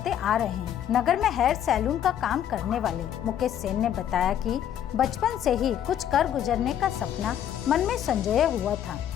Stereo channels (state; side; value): quieter; right; 10.2 dB